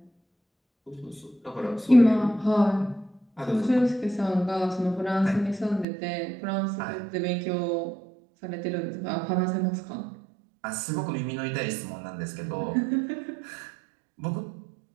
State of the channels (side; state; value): left; drops out; at 5.9 s